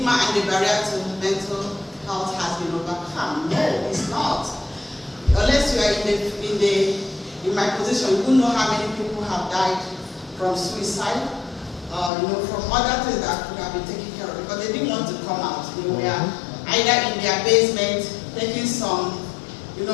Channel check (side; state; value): right; drops out; at 12.1 s